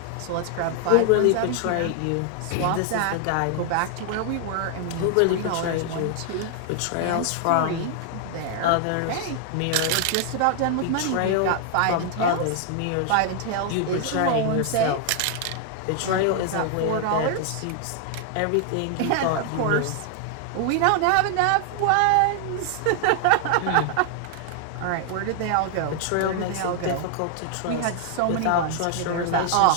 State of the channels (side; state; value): both; different; correlation 0.00